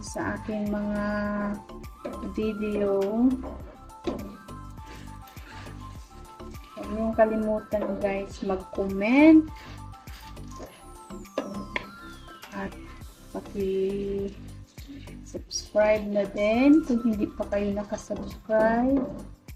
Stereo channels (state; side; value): identical; both; correlation 1.00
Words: sa aking mga video. Huwag niyong kalimutan guys mag-comment at paki-subscribe na din kung hindi pa kayo nakasubscribe.